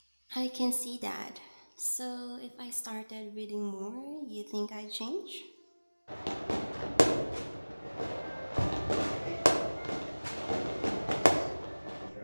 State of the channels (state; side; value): inverted; both; correlation -1.00